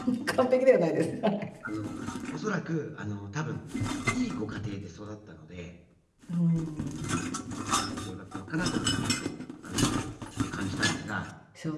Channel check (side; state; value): both; identical; correlation 1.00